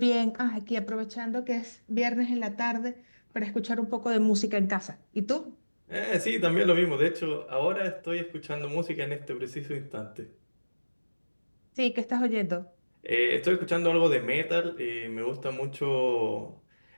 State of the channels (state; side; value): inverted; both; correlation -1.00